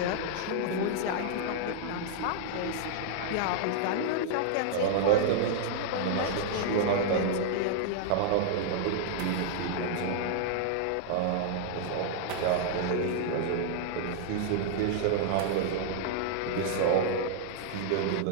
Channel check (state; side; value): different; both; correlation -0.01